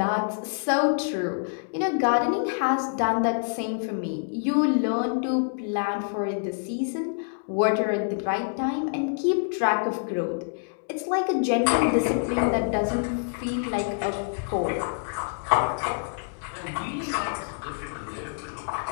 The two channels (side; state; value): right; silent; digital silence